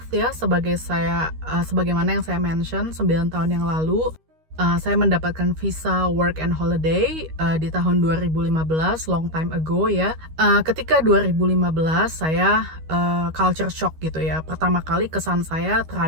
ya, sebagaimana yang saya mention 9 tahun yang lalu. Saya mendapatkan visa work and holiday di tahun 2015, long time ago ya. Ketika 2015 saya culture shock gitu ya. Pertama kali kesan saya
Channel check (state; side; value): late; left; 13 ms